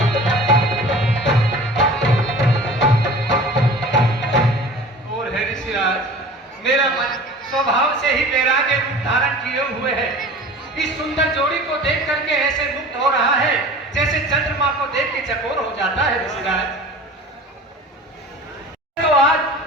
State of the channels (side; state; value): both; normal; correlation 0.41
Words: और है ऋषिराज, मेरा मन स्वभाव से ही वैराग्य रूप धारण किए हुए है। इस सुंदर जोड़ी को देख करके ऐसे मुक्त हो रहा है जैसे चंद्रमा को देख के चकोर हो जाता है ऋषिराज। तो आज